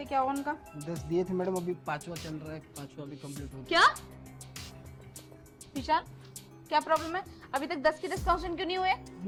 क्या हुआ उनका? 10 दिए थे मैडम, अभी 5वां चल रहा है, 5वां अभी कंप्लीट हो गया। क्या विशाल, क्या प्रॉब्लम है? अभी तक 10 के 10 क्वेश्चन क्यों नहीं हुए?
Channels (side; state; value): both; identical; correlation 1.00